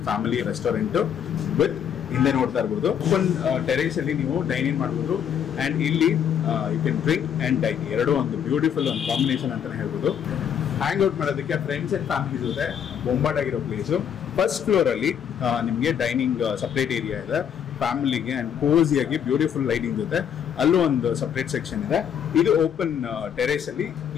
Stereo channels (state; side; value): quieter; right; 8.6 dB